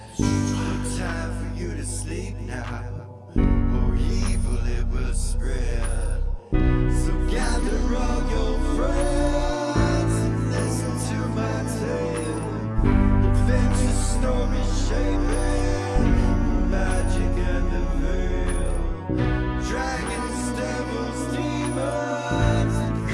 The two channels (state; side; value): identical; both; correlation 1.00